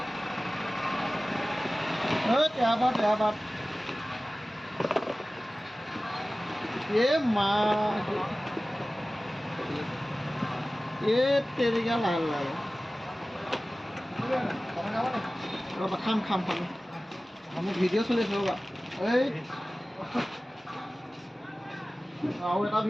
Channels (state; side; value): normal; both; correlation 0.97